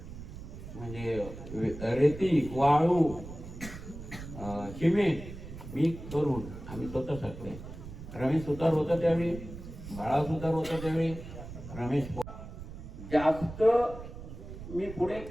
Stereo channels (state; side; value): noise; right; rumble, 12 dB below the sound